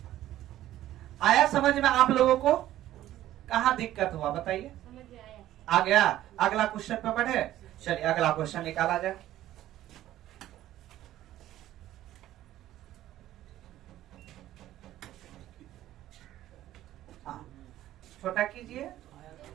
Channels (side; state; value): left; quieter; 13.7 dB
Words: आया समझ में आप लोगों को? कहाँ दिक्कत हुआ बताइए? आ गया? अगला क्वेश्चन पे बढ़े। चलिए अगला क्वेश्चन निकाला जाए। हाँ छोटा कीजिए,